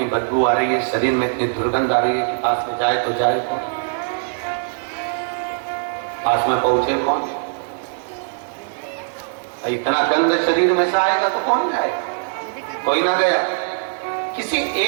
बदबू आ रही है, शरीर में इतनी दुर्गंध आ रही है कि पास में जाए तो जाए कौन, पास में पहुंचे कौन। इतना गंध शरीर में से आएगा तो कौन जाएगा, कोई ना गया। किसी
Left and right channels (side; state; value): left; silent; digital silence